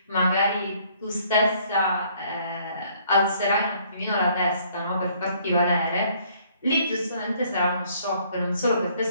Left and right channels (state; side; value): inverted; both; correlation -0.62